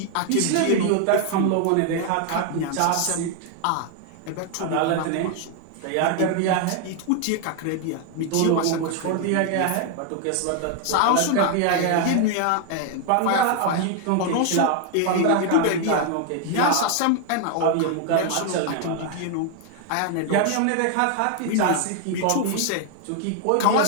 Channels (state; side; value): different; both; correlation 0.00